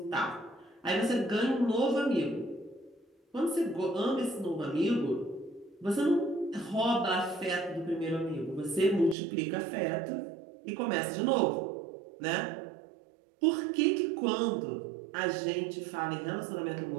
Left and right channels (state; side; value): drops out; left; at 9.2 s